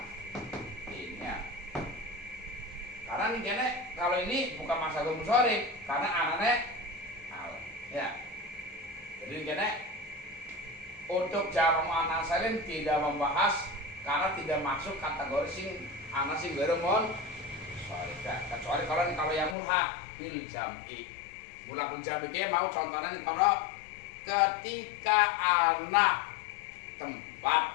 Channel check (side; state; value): right; drops out; at 19.6 s